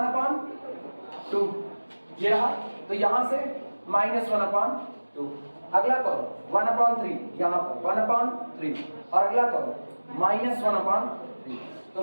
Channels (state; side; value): inverted; both; correlation -1.00